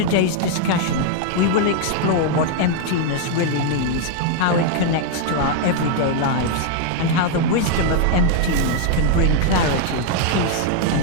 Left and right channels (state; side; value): different; both; correlation 0.00